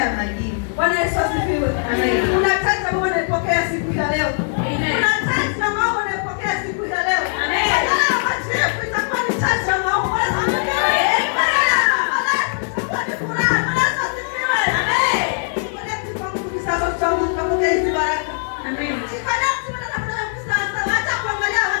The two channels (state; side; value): silent; right; 66 dB below the other